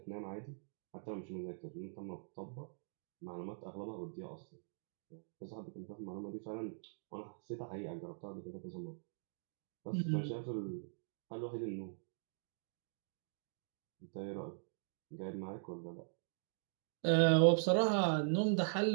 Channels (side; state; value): left; silent; digital silence